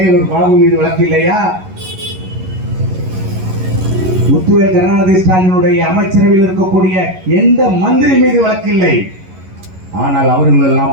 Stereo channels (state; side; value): late; left; 11 ms